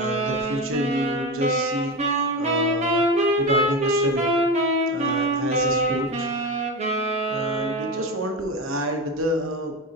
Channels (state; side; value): normal; both; correlation 0.22